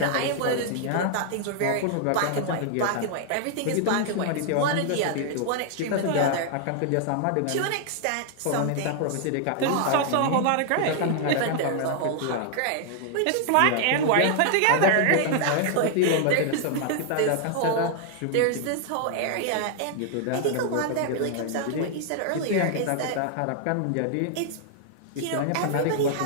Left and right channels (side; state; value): both; different; correlation 0.00